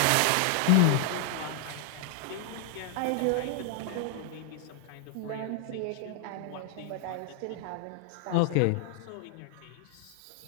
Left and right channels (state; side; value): different; both; correlation 0.00